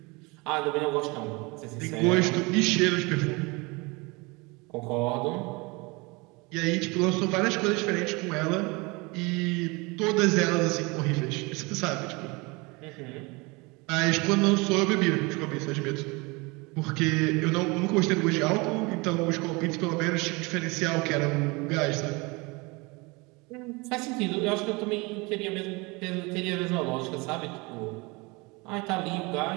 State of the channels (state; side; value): quieter; left; 26.3 dB